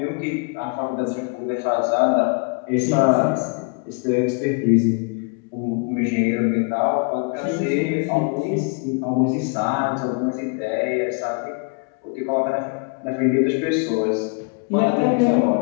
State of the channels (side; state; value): right; quieter; 35.4 dB